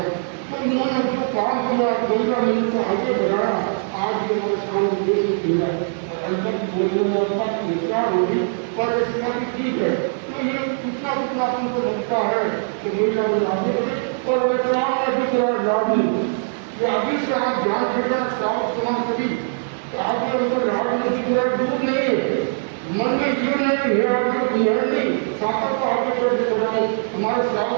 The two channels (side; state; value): left; silent; digital silence